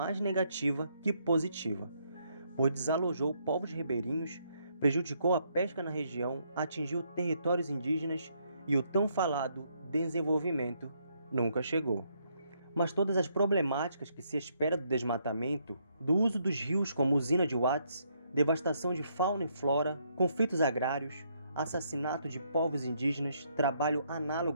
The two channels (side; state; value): both; inverted; correlation -0.73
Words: negativa que positiva, pois desalojou povos ribeirinhos, prejudicou a pesca na região, atingiu territórios indígenas e o tão falado desenvolvimento nunca chegou. Mas todas as problemáticas que se espera do desmatamento, do uso dos rios como usina de Watts, devastação de fauna e flora, conflitos agrários, assassinato de povos indígenas, trabalho